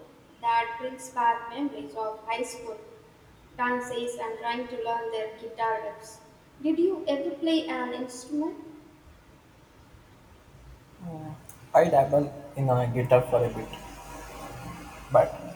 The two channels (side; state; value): both; identical; correlation 1.00